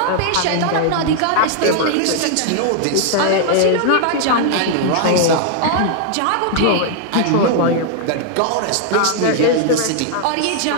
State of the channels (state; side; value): different; both; correlation 0.00